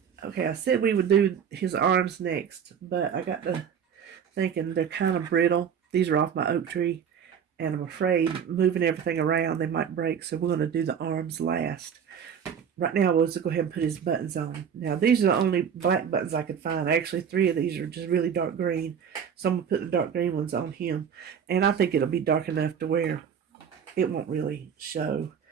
Okay, I said we would do his arms next, but I got to thinking they're kind of brittle. These are off my oak tree, and I'm afraid moving everything around they might break, so we're going to do the arms last. Right now, we'll just go ahead and put his buttons on. Now, these are the only black buttons I could find. Actually, 3 of these are just really dark green, so I'm going to put the dark green ones on him, and I think it'll be dark enough to where it won't really show,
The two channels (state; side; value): quieter; left; 7.7 dB